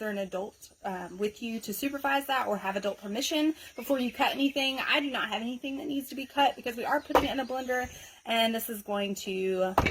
an adult with you to supervise that or have adult permission before you cut anything. I do not have anything that needs to be cut because we are putting it in a blender and this is going to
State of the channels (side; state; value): both; identical; correlation 1.00